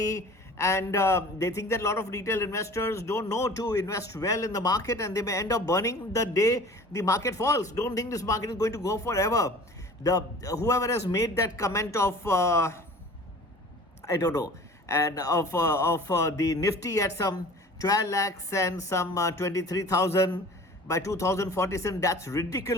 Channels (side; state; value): both; normal; correlation 0.44